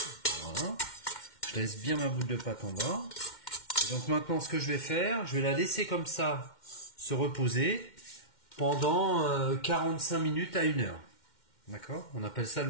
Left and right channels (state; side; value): late; right; 2.1 ms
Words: Voilà. Je laisse bien ma boule de pâte en bas. Et donc maintenant ce que je vais faire, je vais la laisser comme ça se reposer pendant 45 minutes à 1 heure. D'accord ? On appelle ça